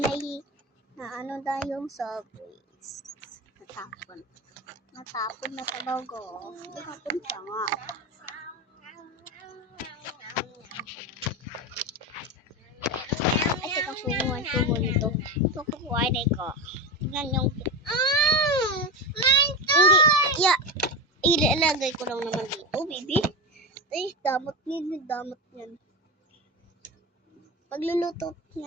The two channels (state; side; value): normal; both; correlation 0.19